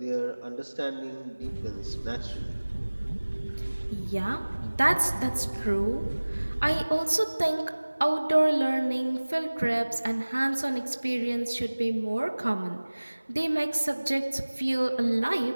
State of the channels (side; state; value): both; inverted; correlation -1.00